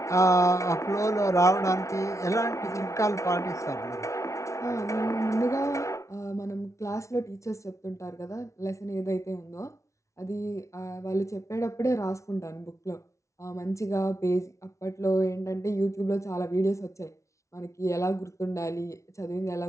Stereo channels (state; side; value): late; right; 0.14 ms